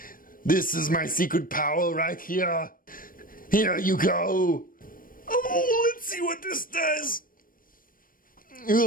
This is my secret power right here. Here you go. Oh, let's see what this does.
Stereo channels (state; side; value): late; right; 0.41 ms